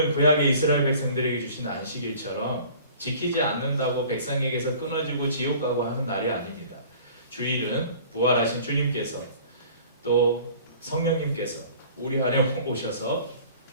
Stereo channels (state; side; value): inverted; both; correlation -0.48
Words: 구약의 이스라엘 백성들에게 주신 안식일처럼 지키지 않는다고 백성에게서 끊어지고 지옥 가고 하는 날이 아닙니다. 주일은 부활하신 주님께서 또 성령님께서 우리 안에 오셔서